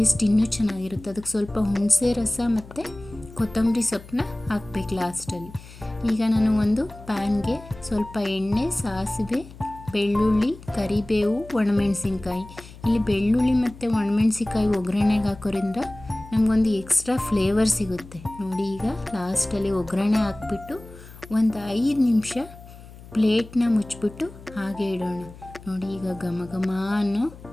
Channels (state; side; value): noise; left; hum, 18 dB below the sound